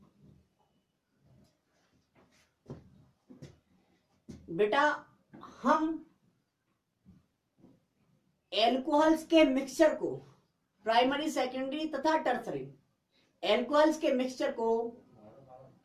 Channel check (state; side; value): identical; both; correlation 1.00